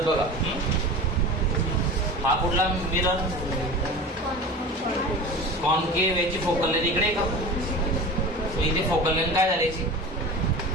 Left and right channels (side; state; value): both; normal; correlation 0.34